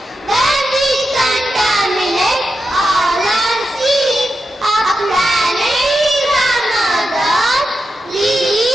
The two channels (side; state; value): both; normal; correlation 0.88